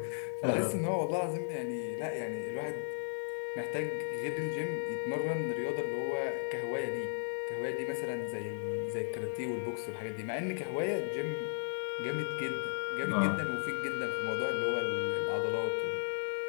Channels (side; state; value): right; silent; digital silence